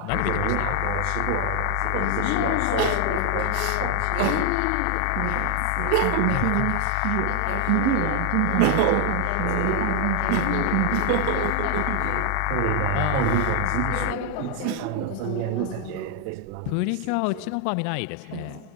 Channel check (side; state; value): both; different; correlation 0.00